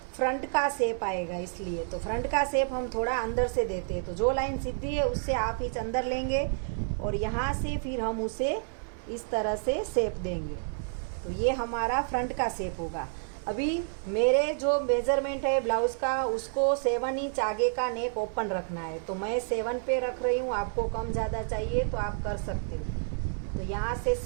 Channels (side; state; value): left; silent; 58 dB below the other